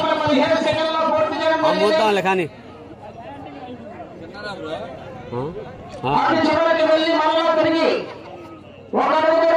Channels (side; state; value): both; identical; correlation 1.00